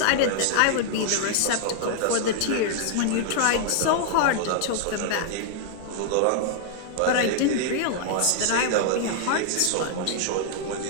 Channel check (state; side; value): different; both; correlation 0.00